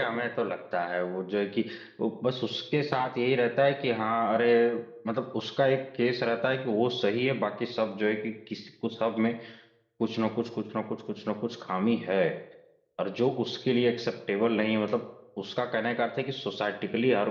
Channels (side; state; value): both; identical; correlation 1.00